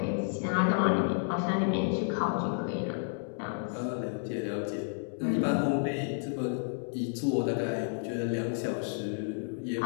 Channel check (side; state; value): right; silent; digital silence